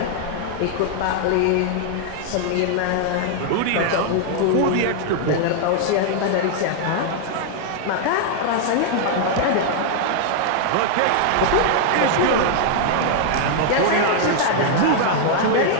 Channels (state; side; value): different; both; correlation 0.00